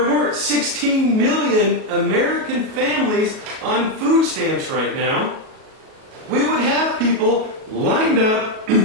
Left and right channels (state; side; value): late; left; 37 ms